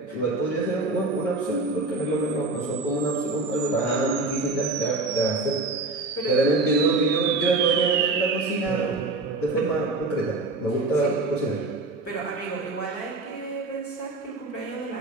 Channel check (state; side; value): quieter; left; 3.3 dB